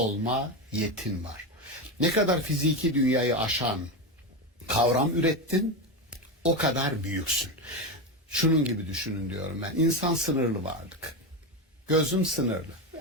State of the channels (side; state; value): both; normal; correlation 0.15